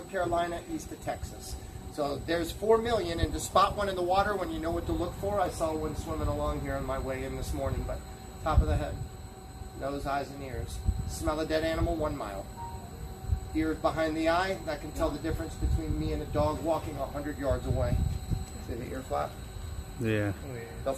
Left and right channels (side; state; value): both; identical; correlation 1.00